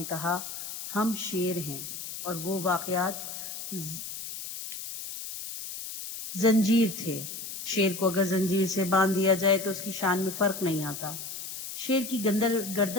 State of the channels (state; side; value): noise; left; hiss, 8 dB below the sound